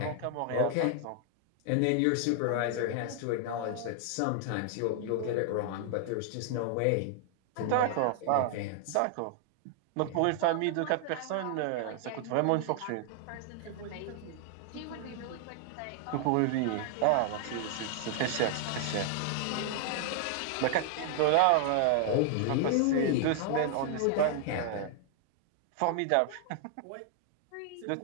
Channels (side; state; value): both; different; correlation 0.00